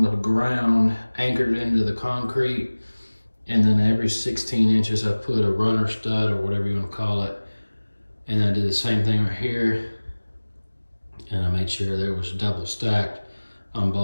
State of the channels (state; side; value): inverted; both; correlation -1.00